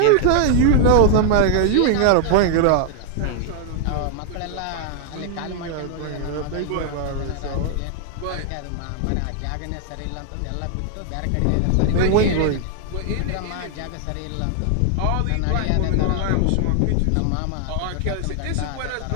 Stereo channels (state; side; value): different; both; correlation 0.00